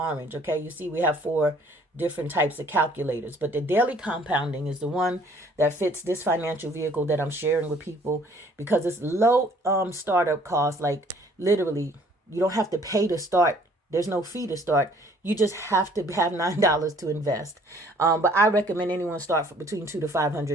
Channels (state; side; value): normal; both; correlation 0.58